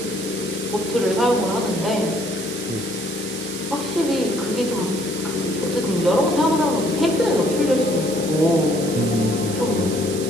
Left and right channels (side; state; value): right; noise; hiss, 9 dB below the sound